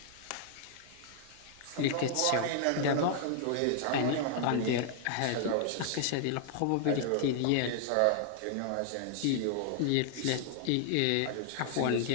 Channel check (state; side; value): different; both; correlation -0.01